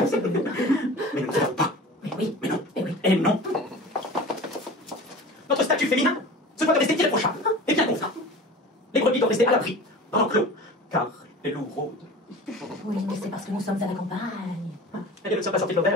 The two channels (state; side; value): normal; both; correlation 0.38